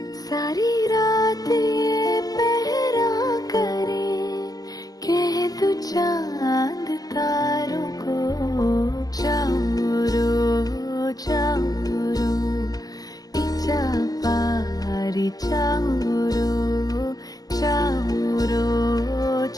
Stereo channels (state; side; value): late; right; 0.18 ms